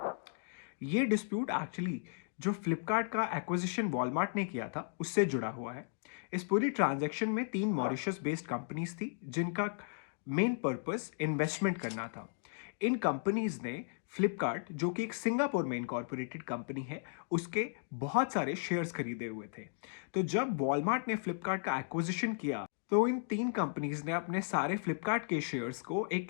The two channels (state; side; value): silent; right; digital silence